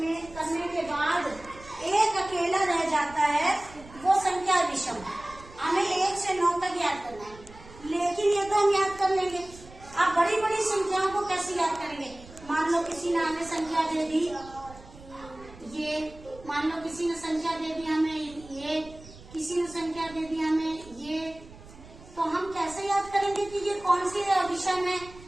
करने के बाद एक अकेला रह जाता है वो संख्या विषम। हमें 1 से 9 तक याद करना है, लेकिन ये तो हम याद कर लेंगे। आप बड़ी बड़ी संख्याओं को कैसे याद करेंगे। मान लो किसी ने हमें संख्या दे दी ये, मान लो किसी ने संख्या दे दी हमें ये, किसी ने संख्या दे दी हमें ये, तो हम कैसे याद करेंगे कि ये कौन सी विषम है।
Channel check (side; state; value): right; noise; rumble, 20 dB below the sound